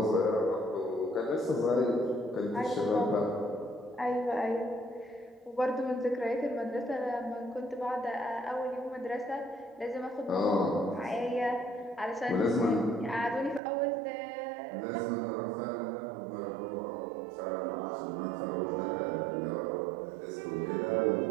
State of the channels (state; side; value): drops out; left; at 13.6 s